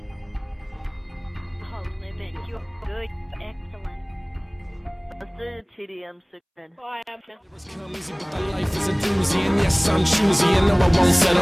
Oh, limit, you're good, excellent. Let's do the TDM 610. Oh, I am. Come easy, but the life is a doozy, and yes, I'm choosy, and no, I won't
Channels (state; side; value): identical; both; correlation 1.00